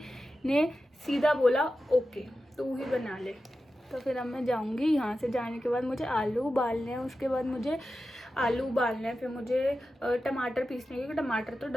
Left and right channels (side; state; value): both; normal; correlation 0.92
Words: ने सीधा बोला ओके तू ही बना ले। तो फिर अब मैं जाऊंगी। यहाँ से जाने के बाद मुझे आलू उबालने हैं, उसके बाद मुझे आलू उबालना है, फिर मुझे टमाटर पीसने, क्योंकि टमाटर तो